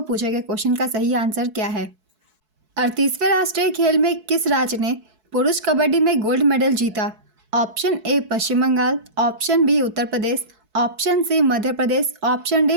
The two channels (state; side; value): late; left; 4.6 ms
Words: पूछे गए क्वेश्चन का सही आंसर क्या है। 38वें राष्ट्रीय खेल में किस राज्य ने पुरुष कबड्डी में गोल्ड मेडल जीता? Option A Paschim Bangal, option B Uttar Pradesh, option C Madhya Pradesh, option D